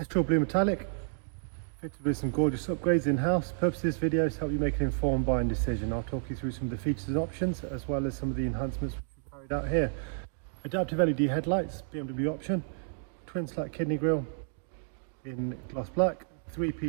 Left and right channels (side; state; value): left; silent; digital silence